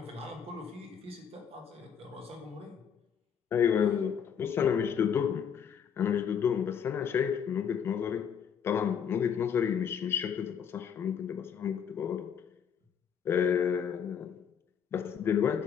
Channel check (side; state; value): right; quieter; 7.7 dB